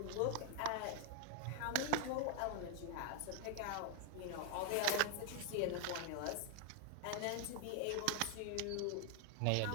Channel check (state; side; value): different; both; correlation 0.00